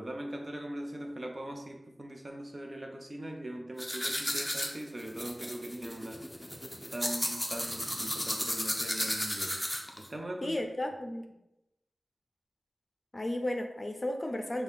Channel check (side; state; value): both; normal; correlation 0.98